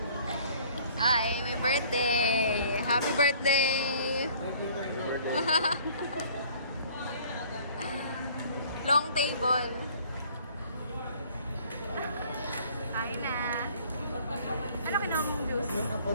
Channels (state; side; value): inverted; both; correlation -0.54